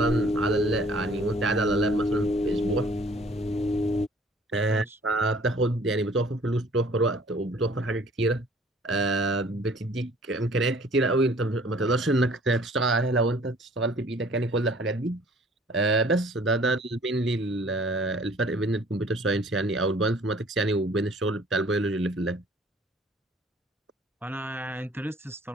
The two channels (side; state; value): both; normal; correlation 0.54